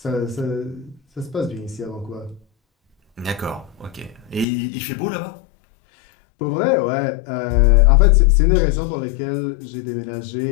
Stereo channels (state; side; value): drops out; right; at 4.5 s